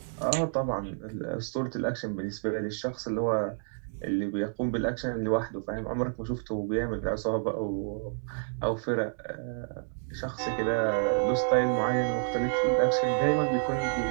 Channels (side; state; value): left; silent; digital silence